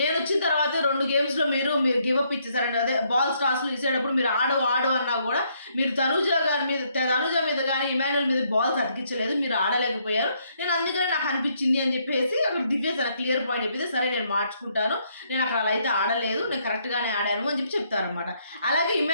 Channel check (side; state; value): both; inverted; correlation -0.71